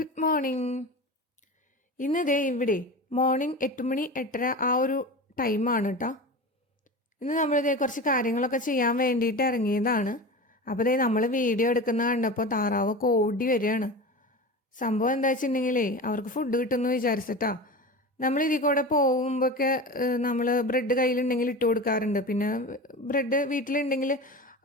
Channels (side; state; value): both; normal; correlation 0.29